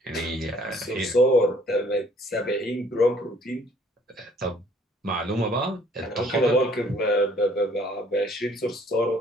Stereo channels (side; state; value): both; normal; correlation 0.59